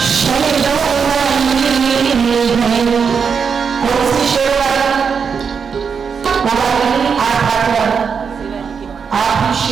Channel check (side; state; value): left; quieter; 6.2 dB